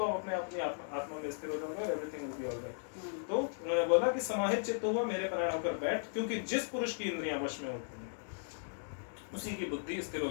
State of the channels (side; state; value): right; silent; digital silence